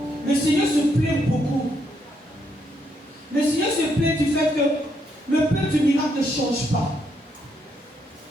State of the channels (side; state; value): both; normal; correlation 0.76